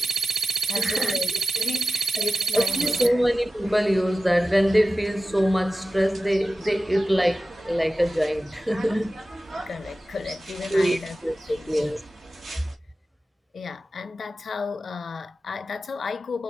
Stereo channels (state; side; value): normal; both; correlation 0.94